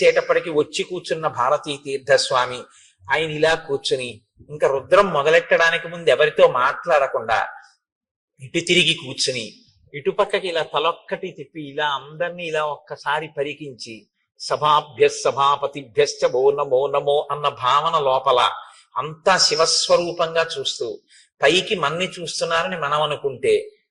వచ్చి కూర్చున్న భారతీ తీర్థస్వామి, ఆయన ఇలా కూర్చుని ఇంకా రుద్రం మొదలెట్టడానికి ముందు ఎవరితో మాట్లాడకుండా ఇటు తిరిగి కూర్చుని ఇటుపక్కకి ఇలా తలొక్కటి తిప్పి ఇలా అందరినీ ఇలా ఒక్కసారి పరికించి సభాపతిభ్యశ్చ ఓ నమో నమో అన్న భావన లోపల అంతా శివస్వరూపంగా చూస్తూ పైకి మన్ని చూస్తున్నారని మనం అనుకుంటే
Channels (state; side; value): identical; both; correlation 1.00